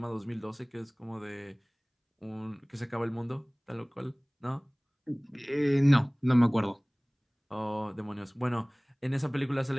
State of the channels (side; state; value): both; identical; correlation 1.00